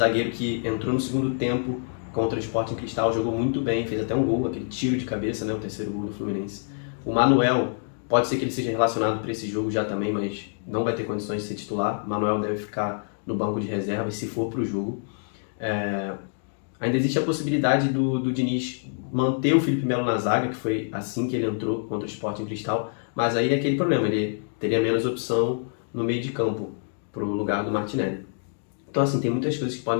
que entrou no segundo tempo contra o Sporting Cristal, jogou muito bem, fez até um gol, aquele tiro de cabeça, né, o terceiro gol do Fluminense. O Manuel, pode ser que ele seja relacionado para esse jogo já também, mas não vai ter condições de ser titular. O Manuel deve ficar no banco de reserva, se for para o jogo. Ainda existe a possibilidade do Diniz manter o Felipe Melo na zaga, que foi assim que ele entrou contra o Sporting Cristal, mas aí é aquele problema, ele teria menos opção no meio de campo para o lugar do Martinelli. Então assim, tem muitas coisas que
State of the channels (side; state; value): right; silent; digital silence